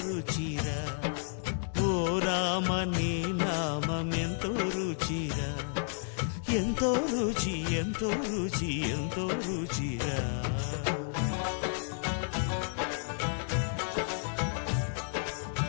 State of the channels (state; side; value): silent; right; digital silence